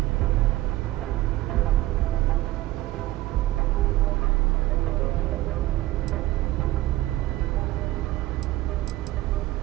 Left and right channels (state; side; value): quieter; left; 16.9 dB